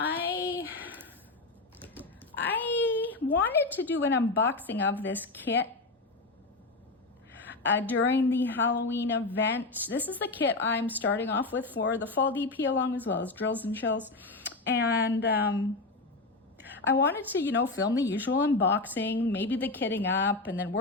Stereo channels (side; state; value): right; quieter; 3.3 dB